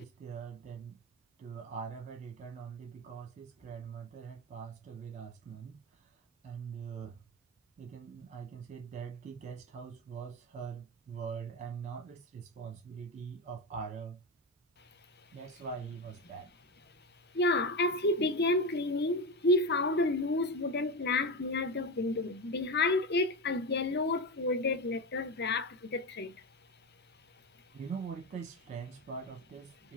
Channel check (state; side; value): normal; both; correlation 0.18